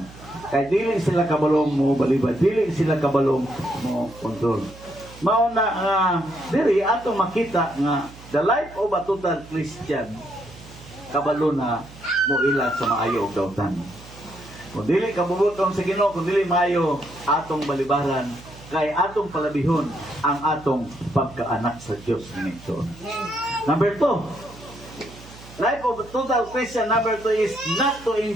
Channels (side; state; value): right; noise; hum, 19 dB below the sound